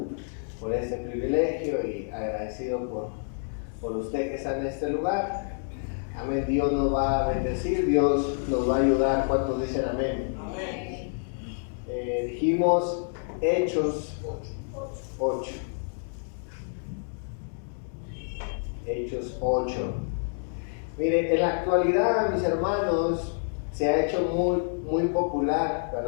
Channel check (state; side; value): silent; right; digital silence